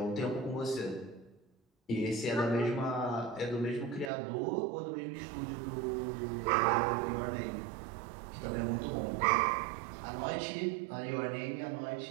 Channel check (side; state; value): left; drops out; at 4.1 s